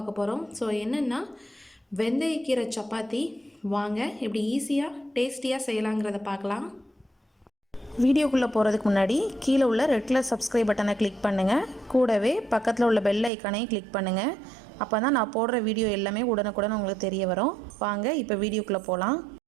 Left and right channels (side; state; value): left; drops out; at 13.3 s